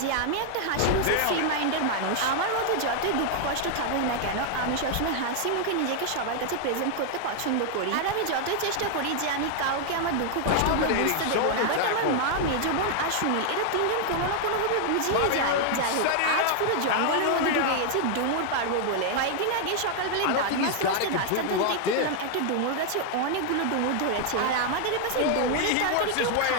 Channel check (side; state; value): both; different; correlation 0.00